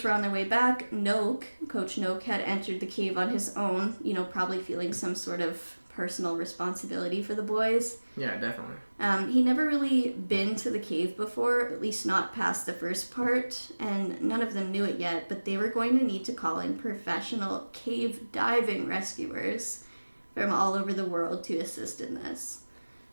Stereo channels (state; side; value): inverted; both; correlation -1.00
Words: were on their way back, Coach Noak had entered the cave on his own, probably feeling some sort of personal responsibility for the boys. Yeah, definitely. He never really been to the cave before, at least not past the first part, and none of them knew it yet, but they were going to need to call in professional cave diving rescuers from all over the world to assist in this.